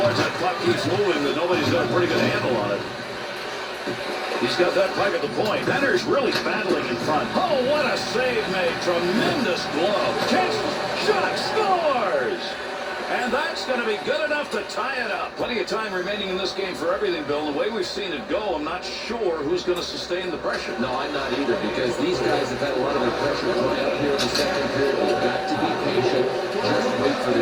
that puck keeps moving, but nobody's got a pretty good handle on it. He's got that puck at the point. Benner's really battling in front. Oh, what a save made. Tremendous glove. Catch, shot, scores! And that's going to be good enough to tie it up. Plenty of time remaining in this game for everything, Bill. The way we've seen it go, I'm not sure who's going to sustain the pressure. No, I'm not either, because these guys have had a lot of the pressure dry up here in the second period. They've got to be patient. Just wait for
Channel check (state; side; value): identical; both; correlation 1.00